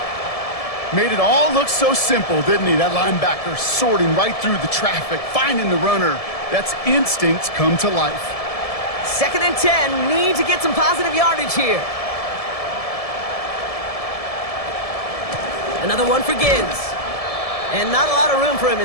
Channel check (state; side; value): late; right; 1.7 ms